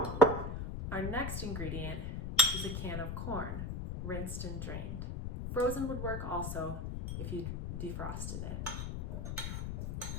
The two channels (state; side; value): noise; left; rumble, 4 dB below the sound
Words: Our next ingredient is a can of corn, rinsed and drained. Frozen would work also if you defrosted it.